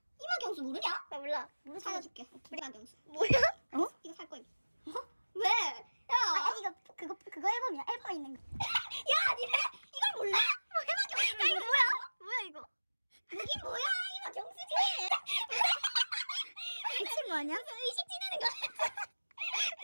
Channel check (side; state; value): both; inverted; correlation -1.00